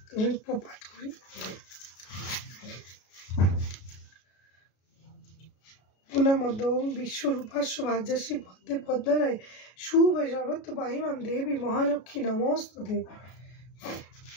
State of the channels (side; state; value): right; late; 33 ms